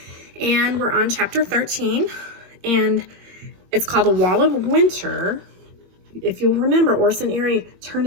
And we're on chapter 13, and it's called A Wall of Winter. If you'll remember, Orson Eerie turned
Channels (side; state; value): left; late; 21 ms